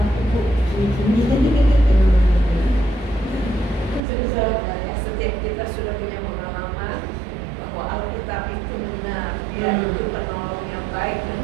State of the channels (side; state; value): left; drops out; at 4.0 s